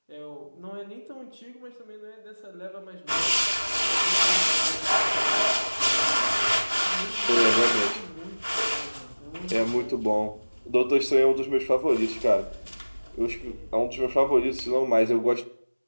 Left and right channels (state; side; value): inverted; both; correlation -1.00